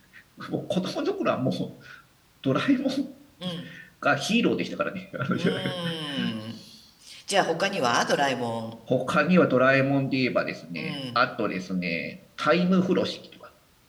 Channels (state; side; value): identical; both; correlation 1.00